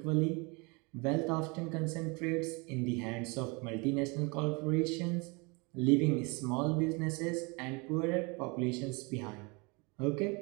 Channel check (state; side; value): quieter; left; 29.2 dB